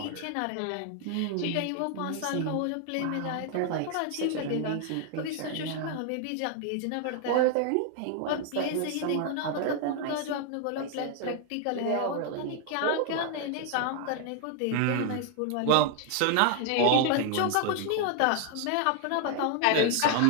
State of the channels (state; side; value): different; both; correlation 0.00